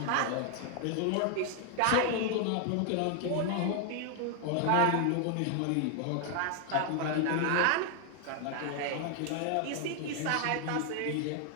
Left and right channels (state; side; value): different; both; correlation 0.00